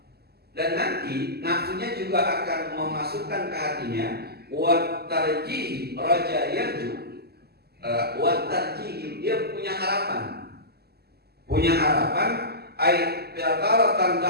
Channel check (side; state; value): left; late; 0.46 ms